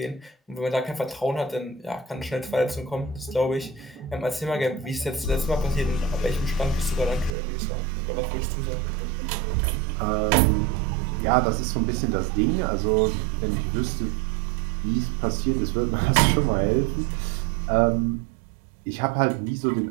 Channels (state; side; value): drops out; left; at 7.4 s